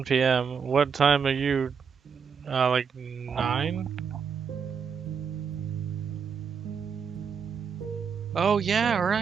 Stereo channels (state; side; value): quieter; left; 6.5 dB